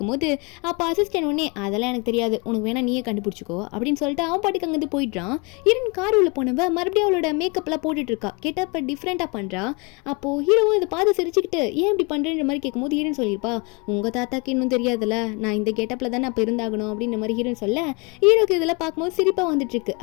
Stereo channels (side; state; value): right; quieter; 30.1 dB